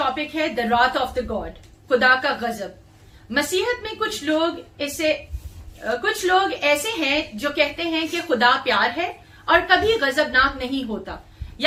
है द रॉथ ऑफ द गॉड, खुदा का गजब। मसीहत में कुछ लोग ऐसे हैं जो कहते हैं कि खुदा प्यार है और कभी गजबनाक नहीं होता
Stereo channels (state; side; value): identical; both; correlation 1.00